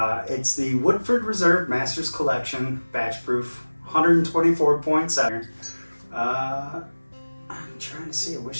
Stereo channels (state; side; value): inverted; both; correlation -1.00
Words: It's the Woodford Reserve Masters Collection batch proof, 124.7. I'm trying to see, I